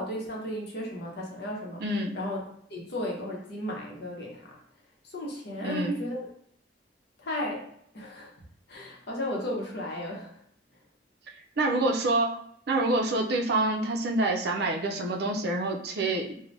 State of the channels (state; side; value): normal; both; correlation 0.20